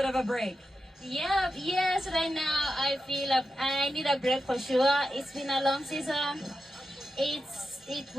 of a break? Yeah, yes, right now I feel I need a break for sure. It's been a long season. It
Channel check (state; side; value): normal; both; correlation 0.89